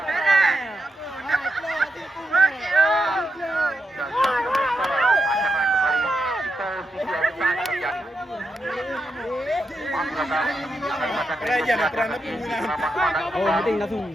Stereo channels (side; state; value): both; normal; correlation 0.85